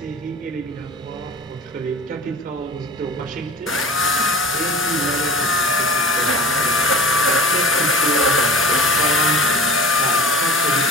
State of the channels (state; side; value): normal; both; correlation 0.38